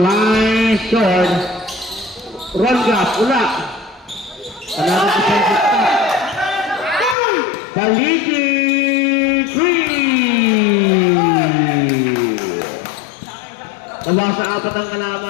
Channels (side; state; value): right; drops out; at 7.2 s